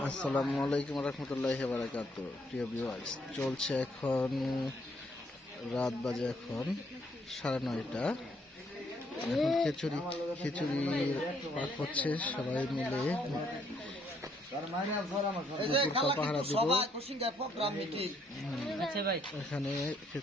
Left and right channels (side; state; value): both; normal; correlation 0.69